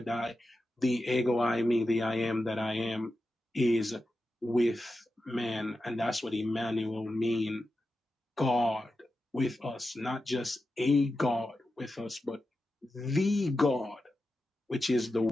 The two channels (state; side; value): normal; both; correlation 0.91